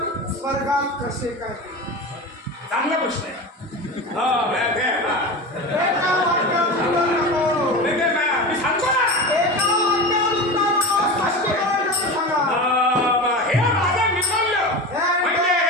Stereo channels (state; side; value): normal; both; correlation 0.27